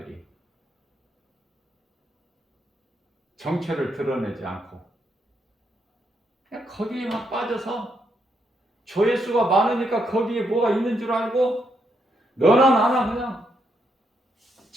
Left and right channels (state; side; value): normal; both; correlation 0.78